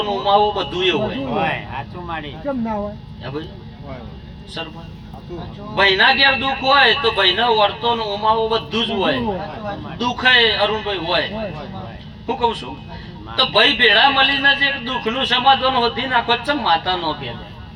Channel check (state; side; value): identical; both; correlation 1.00